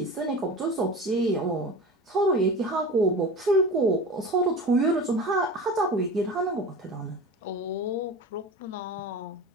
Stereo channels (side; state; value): both; normal; correlation 0.33